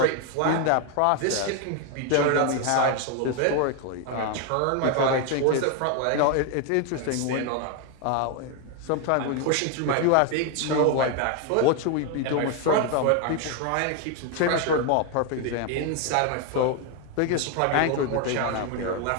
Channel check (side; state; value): both; different; correlation 0.01